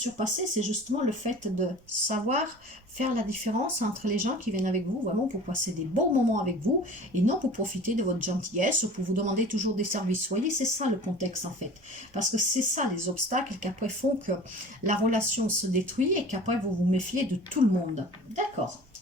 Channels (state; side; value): noise; right; rumble, 30 dB below the sound